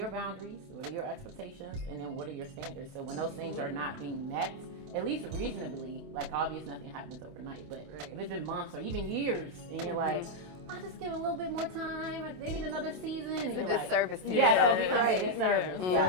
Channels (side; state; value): left; late; 27 ms